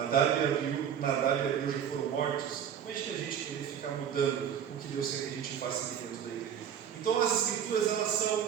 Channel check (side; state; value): left; quieter; 8.7 dB